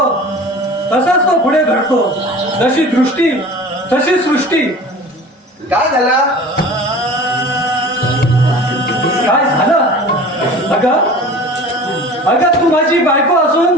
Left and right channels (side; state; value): both; normal; correlation 0.40